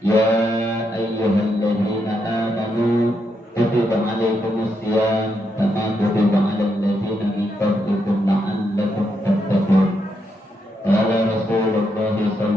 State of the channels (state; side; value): normal; both; correlation 0.80